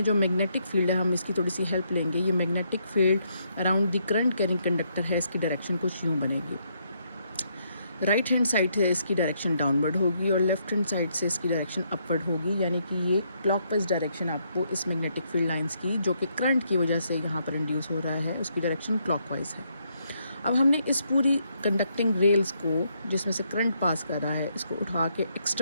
जो मैग्नेटिक फील्ड है हम इसकी थोड़ी सी हेल्प लेंगे। ये magnetic field around the current carrying conductor है, इसकी डायरेक्शन कुछ यूँ बनेगी। राइट हैंड साइड से इसकी डायरेक्शन डाउनवर्ड होगी और लेफ्ट हैंड साइड से इसकी डायरेक्शन अपवर्ड होगी, यानी कि ये क्लॉकवाइज डायरेक्शन आपको इस मैग्नेटिक फील्ड लाइंस की, जो कि करंट की वजह से यहाँ पर इंड्यूस हो रहा है, उसकी डायरेक्शन क्लॉकवाइज है। अब हमने इस पूरी कंडक्टिंग रेल्स को, जिसमें से करंट पास कर रहा है, इसको उठा के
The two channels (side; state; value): both; inverted; correlation -0.75